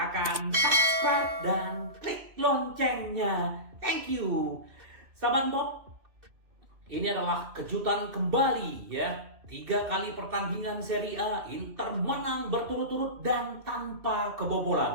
subscribe dan klik loncengnya. Thank you. Sahabat Bob, ini adalah kejutan kembali ya. 3 kali pertandingan Serie A, Inter menang berturut-turut dan tanpa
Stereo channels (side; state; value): left; late; 2.6 ms